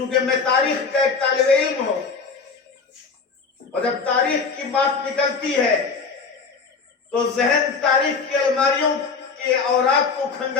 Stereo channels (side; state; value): right; quieter; 5.0 dB